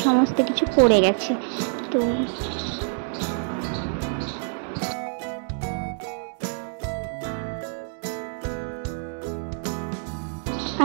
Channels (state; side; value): silent; left; 61 dB below the other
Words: সমস্ত কিছু পড়ে গেছে। তো